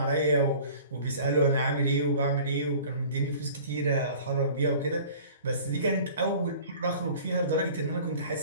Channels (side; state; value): both; inverted; correlation -0.46